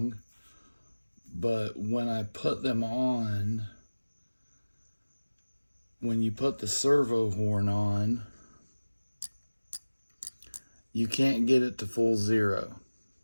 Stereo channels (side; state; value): both; inverted; correlation -1.00